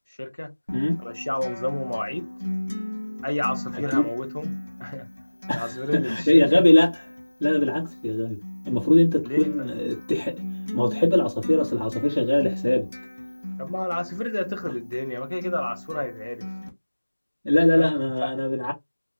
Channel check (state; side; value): inverted; both; correlation -1.00